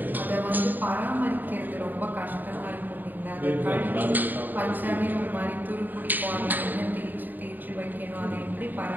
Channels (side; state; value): left; late; 0.089 ms